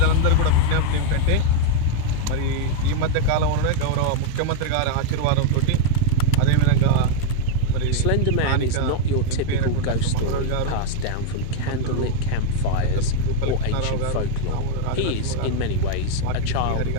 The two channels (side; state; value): both; different; correlation 0.00